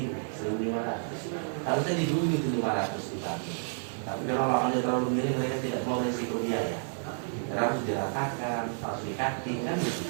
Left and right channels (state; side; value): silent; left; digital silence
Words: 1.500. Harusnya didulu itu 500 dibangun. Tapi kalau lahannya terlalu miring, mereka tidak mau risiko biaya. Karena harus diratakan, harus dikaki, kan gitu.